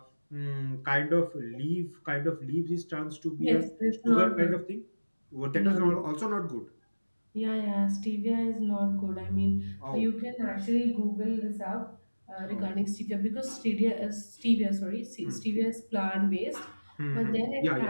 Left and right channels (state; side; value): inverted; both; correlation -1.00